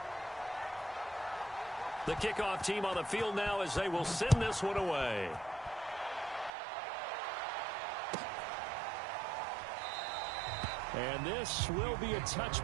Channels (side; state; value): left; drops out; at 6.5 s